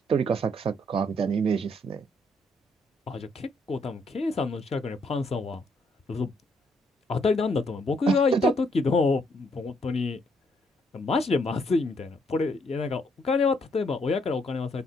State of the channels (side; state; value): both; normal; correlation 0.72